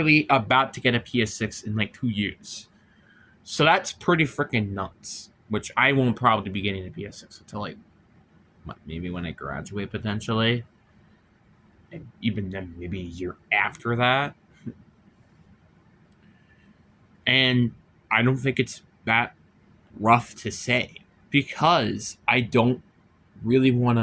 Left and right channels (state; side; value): identical; both; correlation 1.00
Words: about to get a PS6 in like 2 years. So that's pretty freaking nuts, which I won't probably be getting a PS6 until like maybe when I graduate potentially. And even then, maybe a year after that. And I don't think it's that rough to say because I don't really want